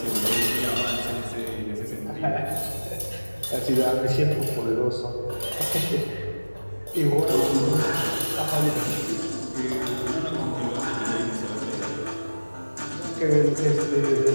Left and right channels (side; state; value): both; inverted; correlation -1.00